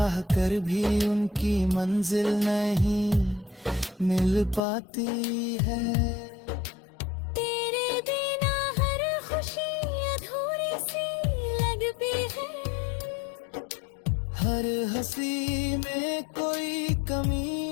कर भी उनकी मंजिल नहीं मिल पाती है। तेरे बिना हर खुशी अधूरी सी लगती है, हर हंसी में कोई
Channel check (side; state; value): right; drops out; at 4.6 s